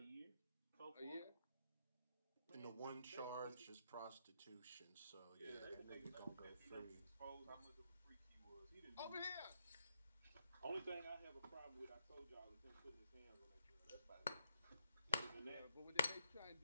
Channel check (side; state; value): both; inverted; correlation -0.76